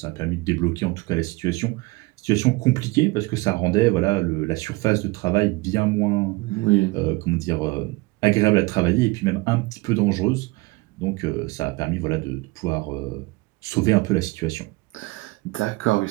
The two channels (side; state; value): left; quieter; 23.3 dB